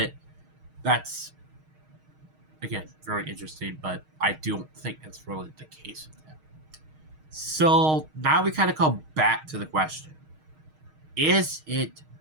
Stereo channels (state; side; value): late; left; 6.4 ms